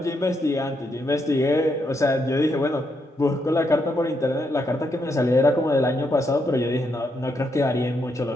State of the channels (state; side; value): normal; both; correlation 0.79